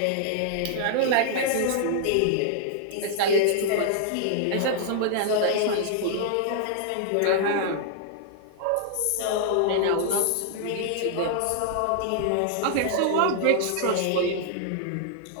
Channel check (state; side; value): different; both; correlation -0.01